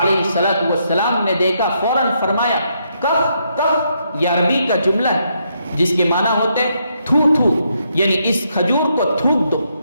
علیہ السلام نے دیکھا، فوراً فرمایا کف کف، یہ عربی کا جملہ ہے جس کے معنی ہوتے تھو تھو، یعنی اس کھجور کو تھوک دو۔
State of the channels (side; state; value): both; inverted; correlation -0.76